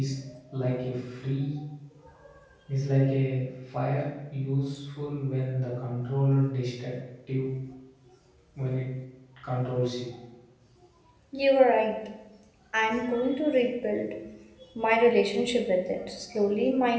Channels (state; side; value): identical; both; correlation 1.00